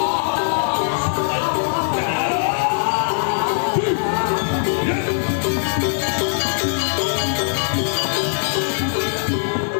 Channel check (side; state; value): right; silent; digital silence